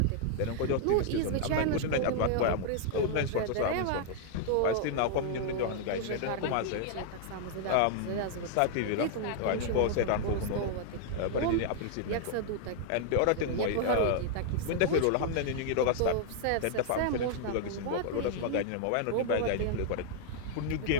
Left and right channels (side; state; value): both; different; correlation -0.01